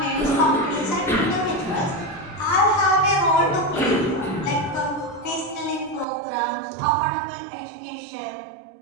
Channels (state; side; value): drops out; left; at 6.1 s